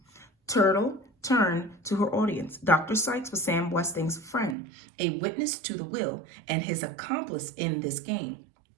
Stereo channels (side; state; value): left; drops out; at 4.5 s